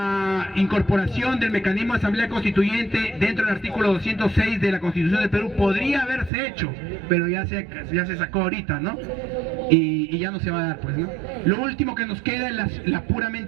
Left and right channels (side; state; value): left; drops out; at 6.3 s